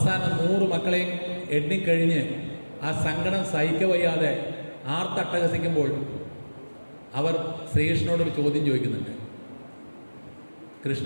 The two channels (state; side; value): inverted; both; correlation -1.00